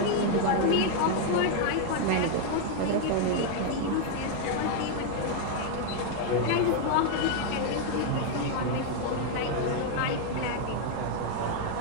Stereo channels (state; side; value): different; both; correlation 0.00